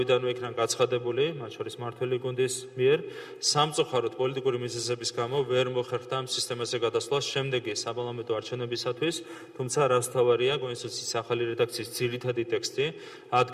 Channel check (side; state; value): both; identical; correlation 1.00